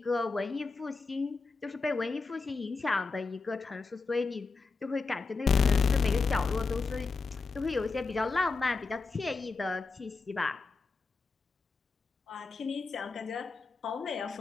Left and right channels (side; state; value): right; quieter; 4.2 dB